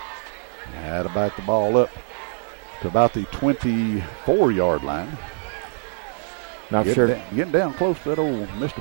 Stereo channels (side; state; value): left; silent; 60 dB below the other